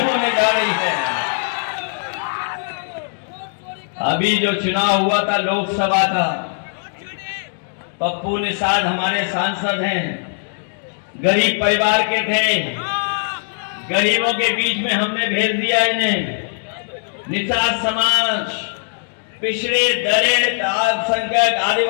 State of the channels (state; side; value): silent; right; digital silence